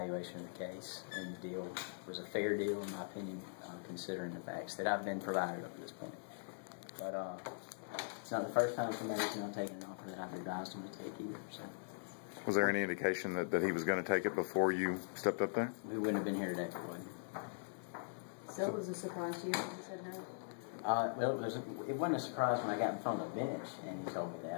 of the case. And the deal was a fair deal, in my opinion, considering the facts that I've been provided up to this point. But it's not the first time somebody's not taken an offer that I've advised him to take either. So. Was there any indication that he was going to take it before you stepped up there? We wouldn't have been here today if it wasn't. So it was a surprise to you when he said no? Well, it wasn't a surprise when I got in front of the bench and he told me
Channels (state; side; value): silent; right; digital silence